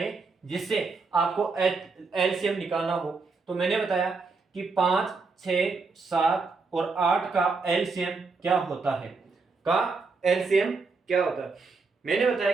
जिससे आपको एलसीएम निकालना हो। तो मैंने बताया कि 5, 6, 7 और 8 का एलसीएम क्या होता है, मैंने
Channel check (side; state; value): left; quieter; 4.3 dB